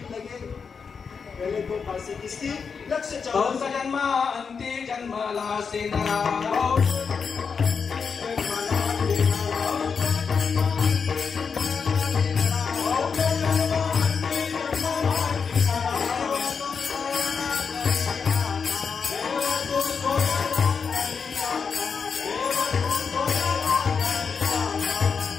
लगे पहले तो फांसी. किसकी? लक्ष्य 84. जन्म अंती जन्मला से नरा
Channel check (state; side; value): quieter; right; 5.8 dB